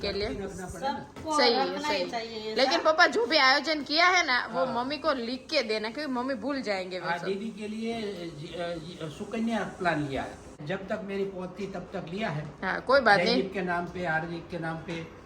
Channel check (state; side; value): identical; both; correlation 1.00